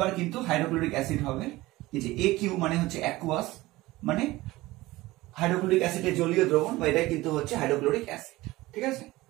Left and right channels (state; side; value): quieter; left; 19.0 dB